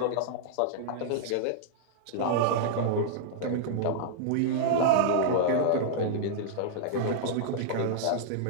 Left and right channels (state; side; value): different; both; correlation -0.01